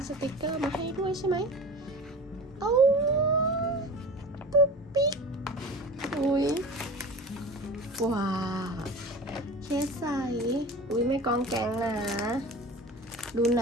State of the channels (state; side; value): normal; both; correlation 0.35